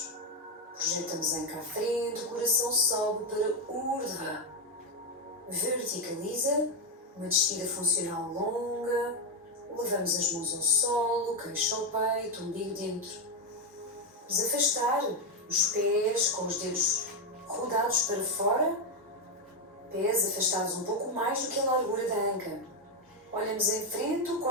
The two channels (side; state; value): both; normal; correlation 0.06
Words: projetamos a anca à frente, o coração sobe para Urdhva. Verticaliza, Uma descida funcional longa. Levamos as mãos ao solo, queixo ao peito, umbigo dentro. Vamos afastar os pés com os dedos rodados para fora. Pés afastados um pouco mais do que a largura da anca. Olhamos em frente, o